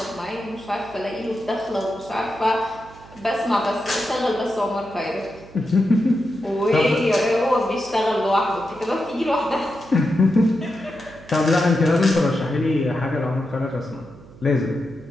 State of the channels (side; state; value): right; noise; hum, 21 dB below the sound